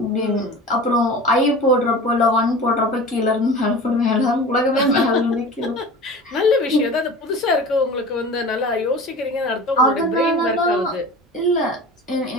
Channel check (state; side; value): normal; both; correlation 0.36